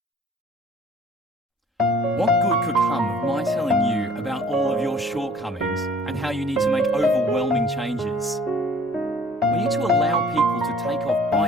What good could come of my telling you about all of your shortcomings and how you need to make overwhelming changes? We need to allow people to take off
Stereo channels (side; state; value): both; normal; correlation 0.53